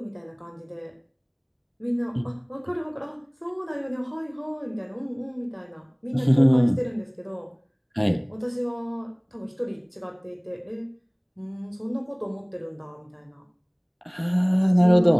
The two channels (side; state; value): both; identical; correlation 1.00